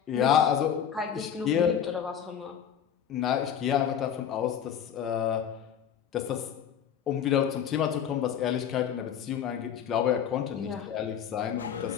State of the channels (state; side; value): quieter; right; 8.7 dB